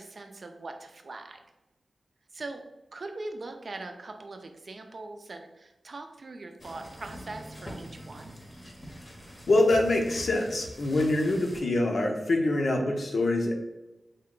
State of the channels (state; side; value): normal; both; correlation 0.91